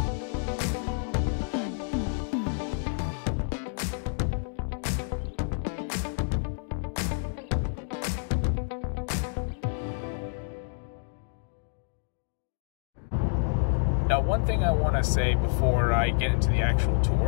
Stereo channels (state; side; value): silent; right; digital silence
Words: Now, one thing I want to say before I get into the actual